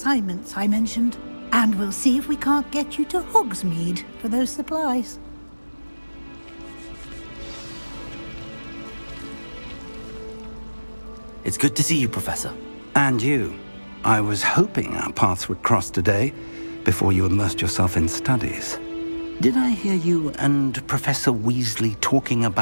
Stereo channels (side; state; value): both; inverted; correlation -1.00